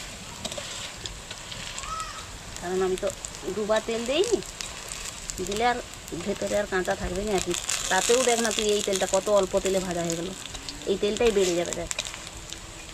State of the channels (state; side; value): identical; both; correlation 1.00